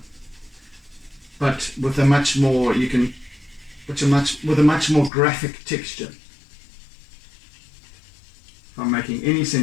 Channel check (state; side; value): drops out; right; at 5.1 s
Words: but with a much more graphic texture. If I'm making any